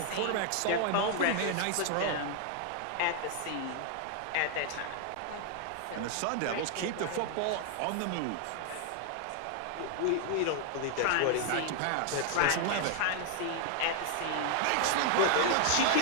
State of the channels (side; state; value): both; different; correlation 0.00